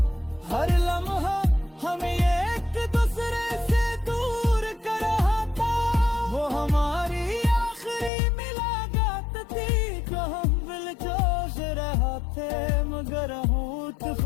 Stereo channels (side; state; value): right; drops out; at 8.1 s